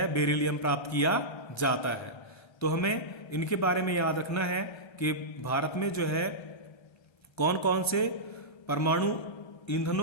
बेरिलियम प्राप्त किया जाता है। तो हमें इनके बारे में याद रखना है कि भारत में जो है कौन कौन से परमाणु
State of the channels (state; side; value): late; right; 1.3 ms